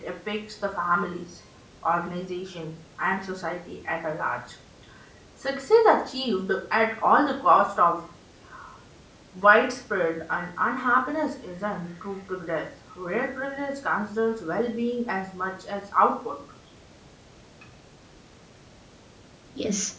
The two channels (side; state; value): both; identical; correlation 1.00